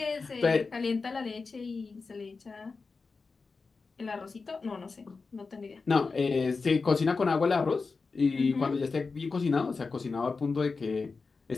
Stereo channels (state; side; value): quieter; right; 4.4 dB